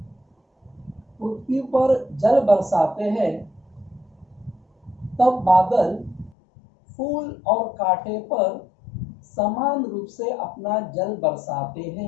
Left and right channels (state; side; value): drops out; right; at 6.4 s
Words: पृथ्वी पर जल बरसाते हैं, तब बादल फूल और कांटे पर समान रूप से अपना जल बरसाते